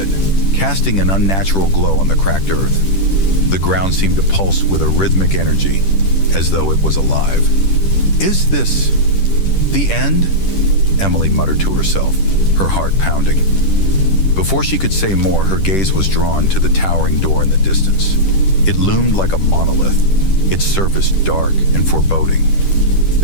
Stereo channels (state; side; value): late; right; 10 ms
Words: casting an unnatural glow on the cracked earth. The ground seemed to pulse with a rhythmic energy, as though it was alive. "Is this the end?" Emily muttered to herself, her heart pounding. Before she could say more, her gaze was drawn to the towering door in the distance. It loomed like a monolith, its surface dark and foreboding.